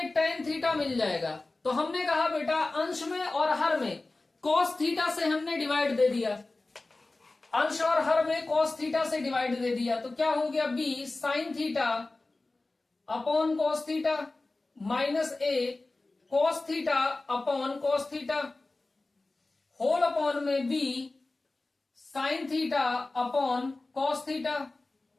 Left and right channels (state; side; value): quieter; right; 3.2 dB